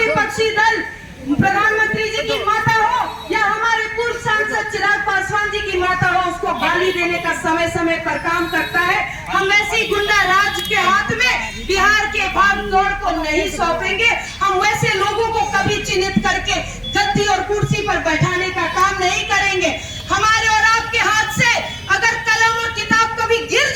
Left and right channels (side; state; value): both; identical; correlation 1.00